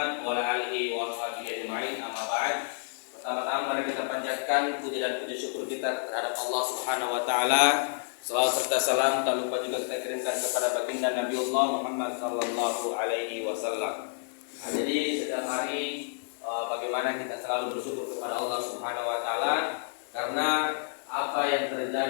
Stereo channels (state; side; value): silent; right; 58 dB below the other